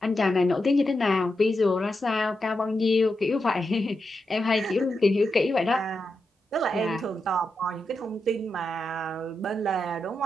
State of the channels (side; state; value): both; normal; correlation 0.87